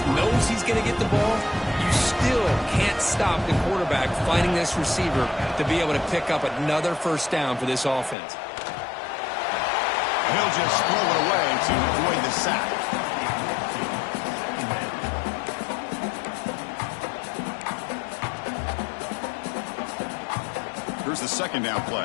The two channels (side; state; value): right; drops out; at 8.2 s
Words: knows he's going to get the ball. You still can't stop the quarterback finding this receiver to be able to pick up another first down for this offense. He'll just throw it away to avoid the sack. Here's the second down